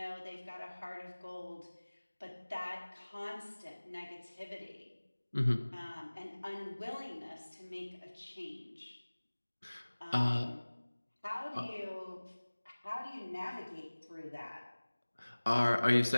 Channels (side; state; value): both; inverted; correlation -1.00